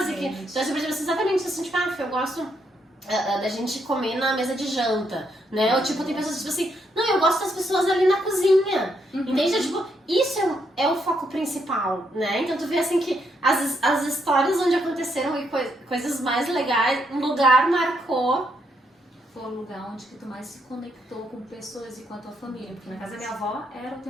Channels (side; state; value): both; normal; correlation 0.76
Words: que... Então, assim, por exemplo, exatamente assim, tipo, eu gosto da gente comer na mesa de janta, né? Ou, tipo, tem pessoas, tipo assim, não, eu gosto das pessoas ali na cozinha, entende? Tipo, isso é o foco principal, né? Então, tu vê, assim, que as histórias onde aconteceram e coisas mais legais, um lugar marcou. Foi o lugar onde que tu mais se conectou com pessoas e com a tua família. Porque na casa da minha avó era o